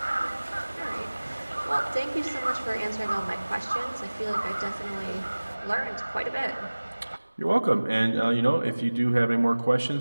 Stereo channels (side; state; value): both; inverted; correlation -1.00